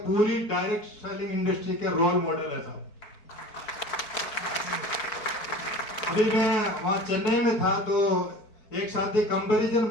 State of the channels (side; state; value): right; late; 4.5 ms